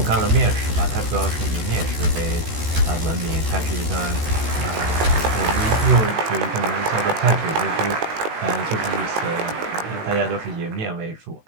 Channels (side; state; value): left; late; 13 ms